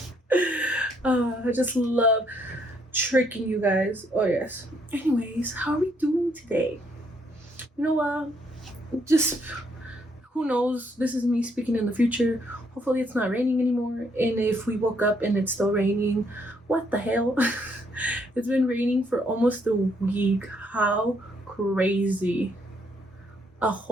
I just love tricking you guys. Oh, yes. Anyways, how are we doing today? You know what? Just who knows? This is me speaking in the future. Hopefully, it's not raining anymore. And if we woke up and it's still raining, what the hell? It's been raining for almost a week. How crazy. A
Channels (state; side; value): normal; both; correlation 0.71